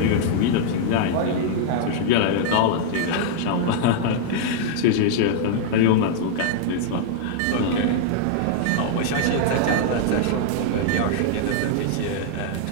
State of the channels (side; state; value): both; different; correlation -0.01